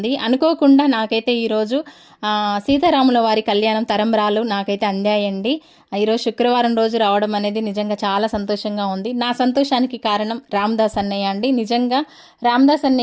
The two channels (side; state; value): both; identical; correlation 1.00